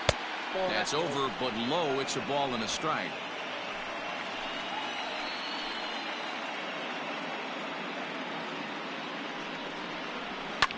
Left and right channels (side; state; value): both; identical; correlation 1.00